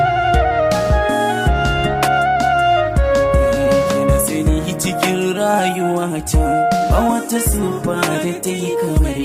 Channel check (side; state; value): both; identical; correlation 1.00